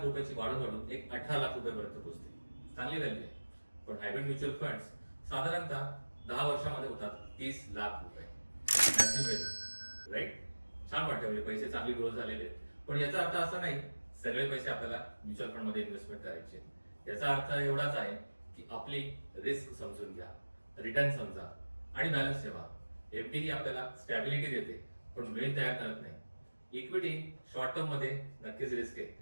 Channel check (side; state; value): both; inverted; correlation -1.00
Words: रुपयाची वाढून एक 18 लाख रुपयापर्यंत पोहोचते. चांगली व्हॅल्यू आहे. पण हायब्रिड म्युच्युअल फंड्स साधारणतः 10 वर्षामध्ये होतात 30 लाख रुपये. राईट? छान वाटतं, म्हणजे पैसे चांगली ग्रोथ झालेले आहेत. पण याचा अर्थ असा नाही सगळे पैसे आपल्याला म्युच्युअल फंड मध्ये इन्व्हेस्टमेंट करायचे. याचा अर्थ एवढाच आहे की आपली रिस्क समजून घ्या, रिटर्न समजा आणि बॅलन्स ठेवा. एफडी ही आपल्याला स्टॅबिलिटी देते पण वेळ तयार करत नाही. इक्विटी शॉर्ट टर्म मध्ये नक्कीच रिस्क आहे,